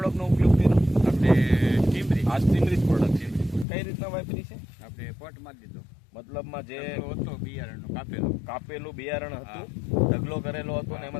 ઉપયોગ કર્યો? આપણે ટીમરી. આ સ્ટીમરીજ પ્રોડક્ટ છે. કઈ રીતના વાપરી છે? આપણે પોટમાં દીધો, મતલબમાં જે હતો બિયારણનો કાપેલું બિયારણ હતું, ઢગલો કરેલો હતો ને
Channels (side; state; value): right; drops out; at 3.7 s